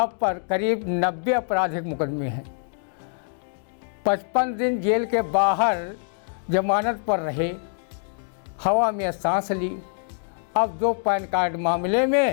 पर करीब 90 आपराधिक मुकदमे हैं। 55 दिन जेल के बाहर जमानत पर रहे, हवा में सांस ली। अब 2 पैन कार्ड मामले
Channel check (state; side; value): silent; right; digital silence